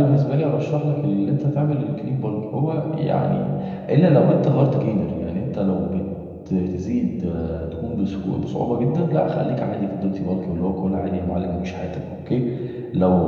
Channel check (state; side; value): identical; both; correlation 1.00